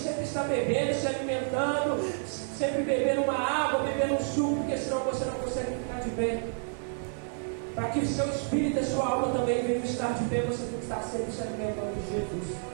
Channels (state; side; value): silent; left; 58 dB below the other